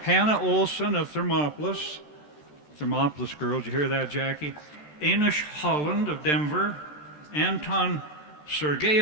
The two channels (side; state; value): right; late; 13 ms